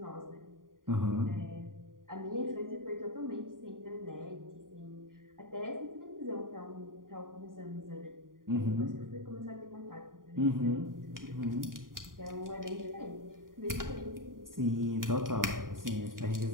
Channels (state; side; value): late; left; 0.90 ms